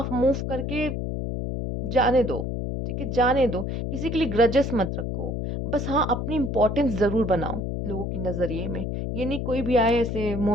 मूव करके जाने दो। ठीक है, जाने दो, किसी के लिए ग्रजेस मत रखो। बस हाँ, अपनी इंपॉर्टेंस जरूर बनाओ लोगों के नजरिए में। ये नहीं कोई भी आए ऐसे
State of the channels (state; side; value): noise; left; hum, 3 dB below the sound